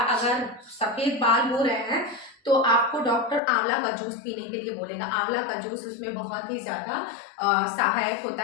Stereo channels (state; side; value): drops out; right; at 3.4 s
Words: अगर सफेद बाल हो रहे हैं तो आपको डॉक्टर आंवला का जूस पीने के लिए बोलेगा। आंवला का जूस उसमें बहुत ही ज्यादा सहायक होता